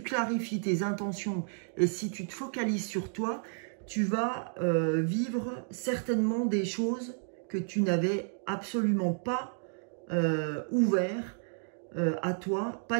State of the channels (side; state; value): left; silent; 57 dB below the other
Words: clarifies tes intentions et si tu te focalises sur toi, tu vas vivre certainement des choses que tu n'avais absolument pas ouvert à toi,